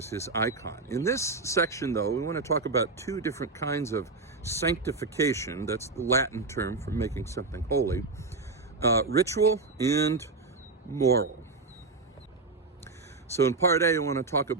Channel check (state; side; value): quieter; left; 3.8 dB